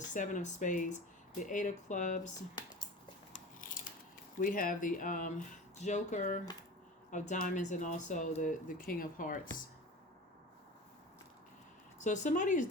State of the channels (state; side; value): normal; both; correlation 0.34